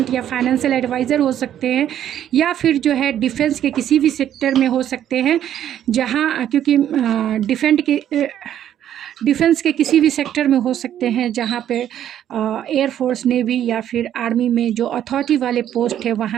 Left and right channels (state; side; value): quieter; left; 10.7 dB